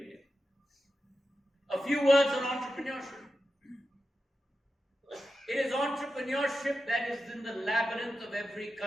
A few words on entrepreneurship. It is entrepreneurship that is in the labyrinth of every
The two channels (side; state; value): both; normal; correlation 0.91